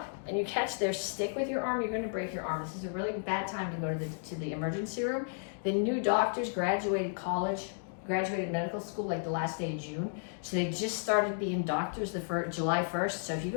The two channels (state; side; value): silent; right; digital silence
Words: and you catch their stick with your arm, you're going to break your arm. This is a really bad time to go to the emergency room. The new doctors graduated college, graduated medical school like the last day of June. So they just started being doctors July 1st. So if you